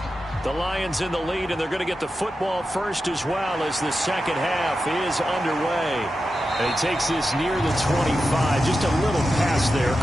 The Lions in the lead, and they're going to get the football first as well as the second half is underway. And he takes this near the 25. Just a little pass there.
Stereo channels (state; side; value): normal; both; correlation 0.91